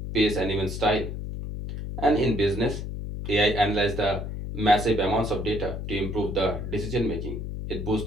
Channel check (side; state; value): left; noise; hum, 6 dB below the sound